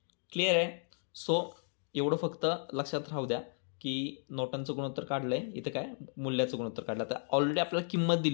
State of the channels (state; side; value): silent; right; digital silence